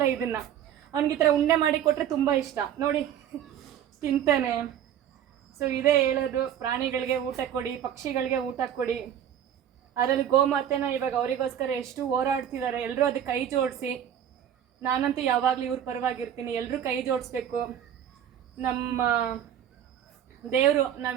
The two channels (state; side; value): quieter; left; 9.9 dB